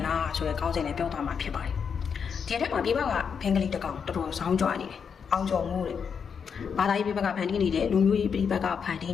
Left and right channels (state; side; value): quieter; right; 6.6 dB